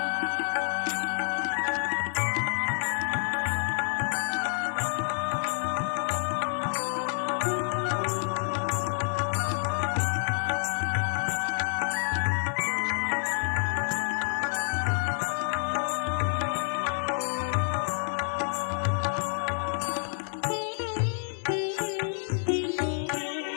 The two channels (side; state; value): right; silent; digital silence